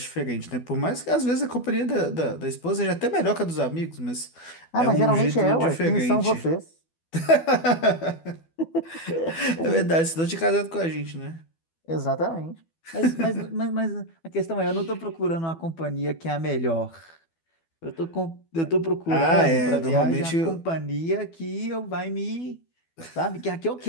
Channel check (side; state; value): right; late; 12 ms